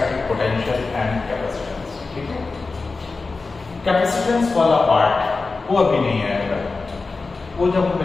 पोटेंशियल एंड कैपेसिटेंस। ठीक है, कैपेसिटेंस वाला पार्ट वो अभी नहीं आएगा, वो जब हम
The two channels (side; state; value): right; quieter; 4.0 dB